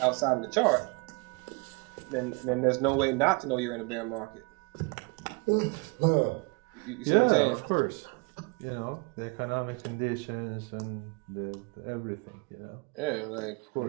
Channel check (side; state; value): left; quieter; 30.6 dB